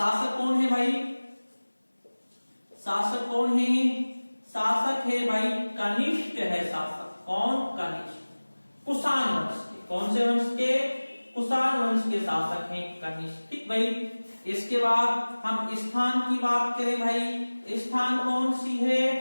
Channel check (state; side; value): inverted; both; correlation -1.00